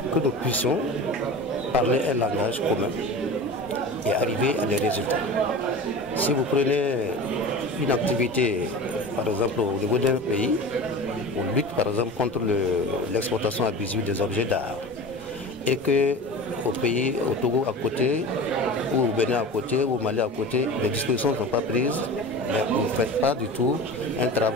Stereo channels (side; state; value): both; normal; correlation 0.33